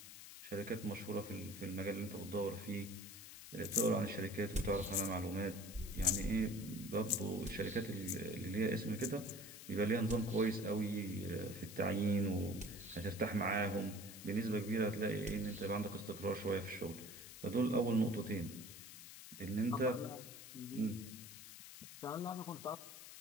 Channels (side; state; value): left; noise; hiss, 13 dB below the sound